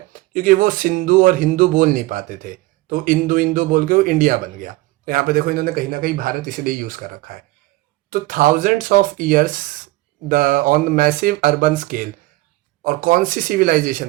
क्योंकि वो सिंधु और हिंदू बोल नहीं पाते थे, तो इंदु इंदु बोल के वो इंडिया बन गया। तो यहाँ पे देखो इन्होंने कहीं ना कहीं भारत इसलिए यूज़ कर रखा है। तो thousands of years the on massive urban scale, और कौन सी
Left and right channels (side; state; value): left; quieter; 19.5 dB